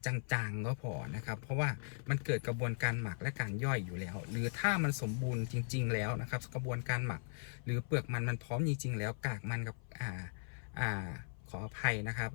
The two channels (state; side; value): silent; right; 52 dB below the other